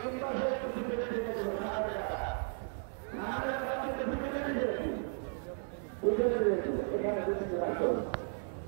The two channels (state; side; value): silent; left; 55 dB below the other